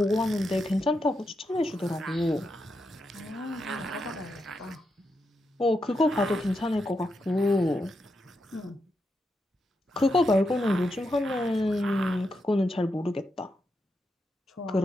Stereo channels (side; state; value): both; normal; correlation 0.84